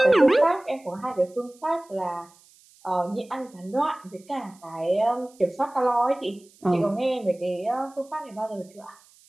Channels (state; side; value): noise; right; hiss, 28 dB below the sound